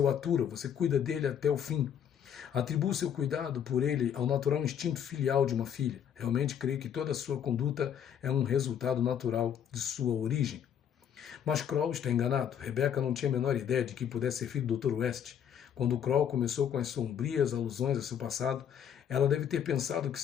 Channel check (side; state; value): right; quieter; 8.8 dB